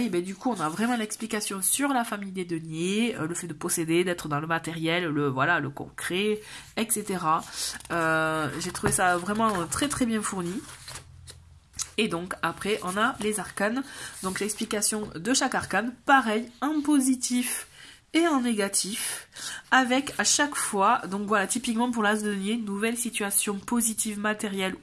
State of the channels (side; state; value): both; identical; correlation 1.00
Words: ben, du coup on a vraiment l'explication sur la famille des deniers, le fait de posséder, d'être dans le matériel, le concret, etc. J'ai trouvé ça vraiment très très bien fourni. Et donc après on a les arcanes, donc l'explication de chaque arcane, pareil, en positif et en négatif, avec à chaque fois, donc voilà, typiquement pour l'as de denier, nouvelle situation positive matérielle